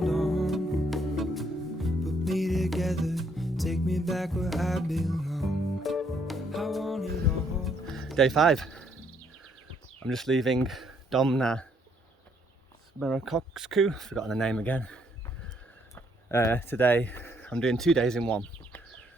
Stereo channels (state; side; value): normal; both; correlation 0.69